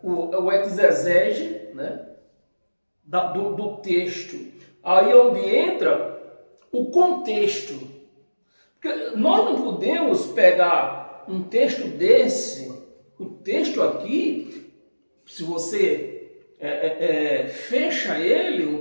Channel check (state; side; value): inverted; both; correlation -1.00